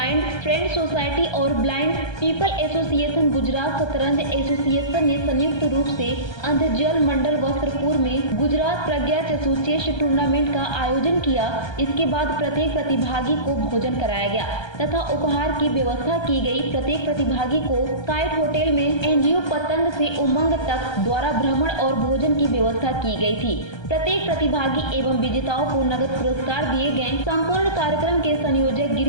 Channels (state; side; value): late; right; 1.3 ms